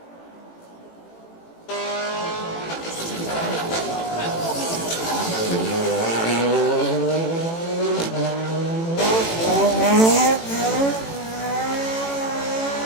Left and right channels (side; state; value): right; late; 18 ms